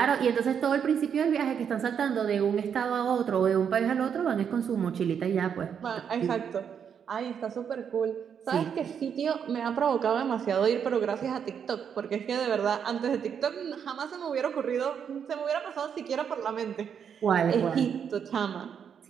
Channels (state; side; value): quieter; left; 7.6 dB